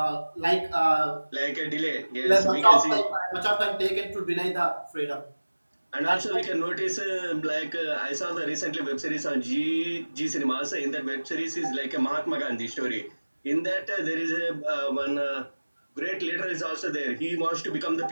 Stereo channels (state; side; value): inverted; both; correlation -1.00